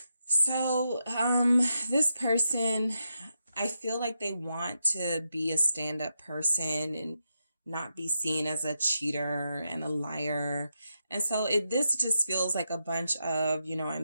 So, this person, I feel like they want to be a stand-up person and not be seen as a cheater and a liar. And so this just feels like a bunch of, you know, I'm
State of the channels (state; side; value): inverted; both; correlation -0.86